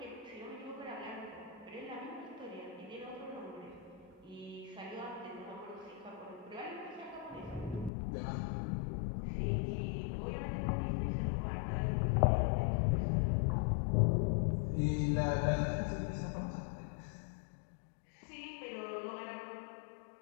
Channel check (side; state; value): right; drops out; at 7.9 s